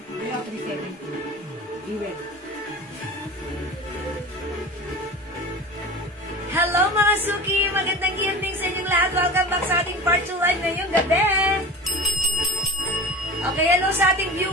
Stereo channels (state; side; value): normal; both; correlation 0.33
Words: Ayaw, 370. Even. Hello mga Suki! Magandang evening sa inyong lahat. Welcome back sa ating part 2 live ngayong gabi. Okay, hello sa ating